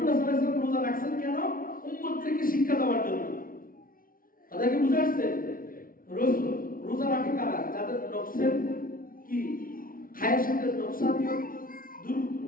সাল্লাল্লাহু আলাইহি ওয়াসাল্লাম রোজা রাখছেন কেন? উম্মতদেরকে শিক্ষা দেওয়ার জন্য। তাদেরকে বুঝে আসছে রোজা রাখে কারা? যাদের নফসের কি খায়েশের নকশানিয়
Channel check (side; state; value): right; late; 0.42 ms